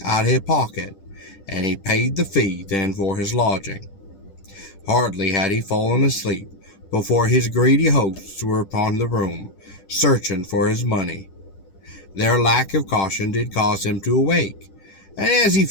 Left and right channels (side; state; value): right; late; 10 ms